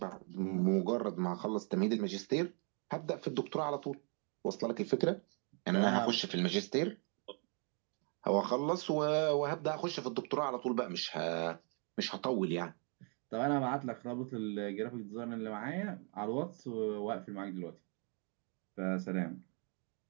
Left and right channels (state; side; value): quieter; left; 39.3 dB